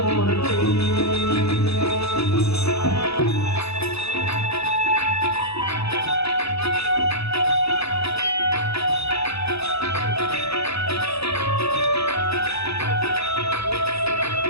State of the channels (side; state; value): right; late; 0.78 ms